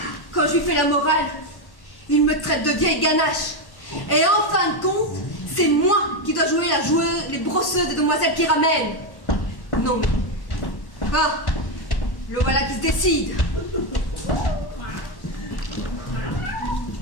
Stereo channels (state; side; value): late; right; 1.1 ms